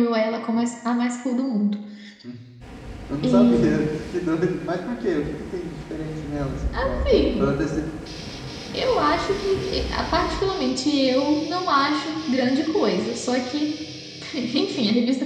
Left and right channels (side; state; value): both; identical; correlation 1.00